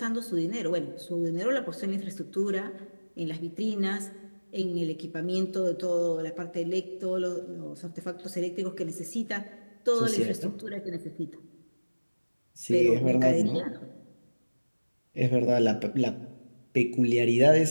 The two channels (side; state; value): both; inverted; correlation -1.00